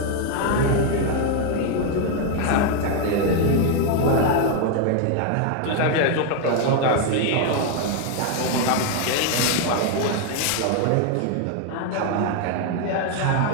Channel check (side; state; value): both; different; correlation 0.00